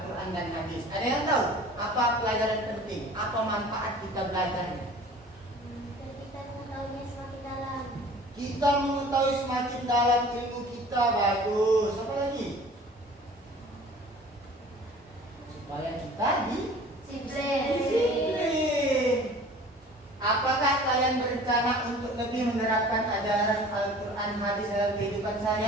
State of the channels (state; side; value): normal; both; correlation 0.46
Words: dan hadis? Ada yang tahu apa pelajaran penting? Apa manfaat kita belajarnya? Kita mengetahuinya semakin dalam. Kita mengetahui semakin dalam ilmu kita. Bagus. Apa lagi? Supaya kita disiplin. Apakah kalian berencana untuk lebih menerapkan ajaran Al-Quran hadis dalam kehidupan